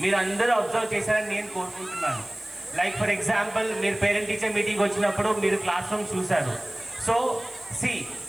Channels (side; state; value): right; noise; hiss, 22 dB below the sound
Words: మీరు అందరూ అబ్జర్వ్ చేశారని నేను కోరుకుంటున్నాను. లైక్ ఫర్ ఎగ్జాంపుల్, మీరు పేరెంట్ టీచర్ మీటింగ్ వచ్చినప్పుడు మీరు క్లాస్ రూమ్స్ చూశారు. So see